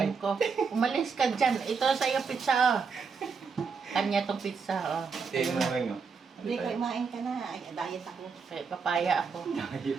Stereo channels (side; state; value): left; quieter; 5.4 dB